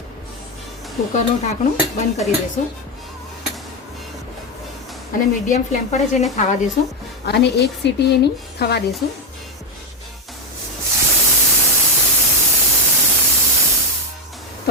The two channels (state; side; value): normal; both; correlation 0.08